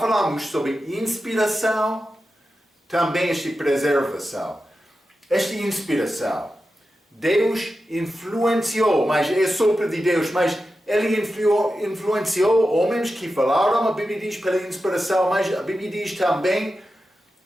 sobre inspiração, também esta preservação. Esta inspiração, Deus influenciou, mas é sopro de Deus, mas Ele influenciou homens que falaram, a Bíblia diz, pela inspiração, mas a Bíblia diz também,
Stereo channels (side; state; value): both; normal; correlation 0.91